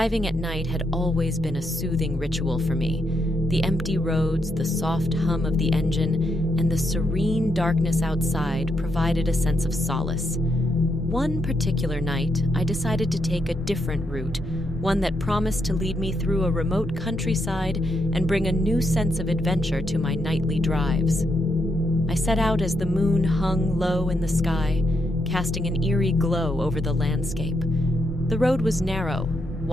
at night had always been a soothing ritual for me. The empty roads, the soft hum of the engine, and the serene darkness outside provided a sense of solace. One particular night, I decided to take a different route, one that promised to lead me through a remote countryside and bring a new sense of adventure to my nightly drives. I set out as the moon hung low in the sky, casting an eerie glow over the landscape. The road was narrow,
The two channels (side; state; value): both; normal; correlation 0.80